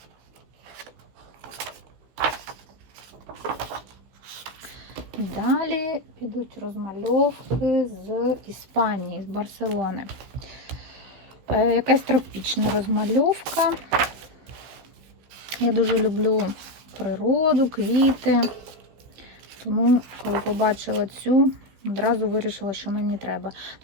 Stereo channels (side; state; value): left; late; 15 ms